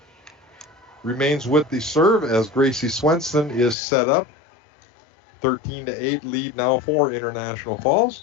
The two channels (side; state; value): right; drops out; at 3.8 s